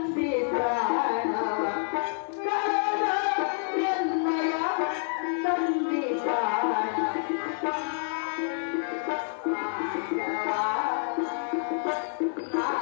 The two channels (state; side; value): silent; right; digital silence